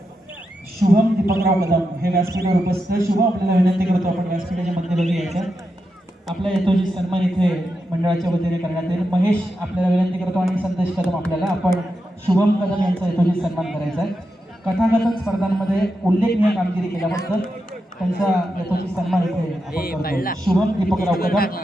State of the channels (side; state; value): both; normal; correlation 0.87